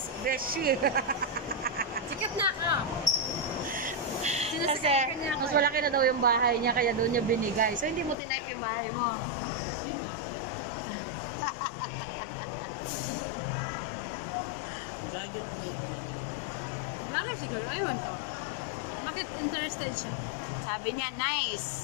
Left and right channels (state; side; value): drops out; right; at 8.2 s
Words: Beshi. Sikat na ako. Kasi, mas malaki na daw yung bahay niya, kaya doon niya binigay. So, hindi mo tinype yung bahay mo. Vlogger po. Vlogger siguro. Ayun. Bakit interested siya? Sabi niya,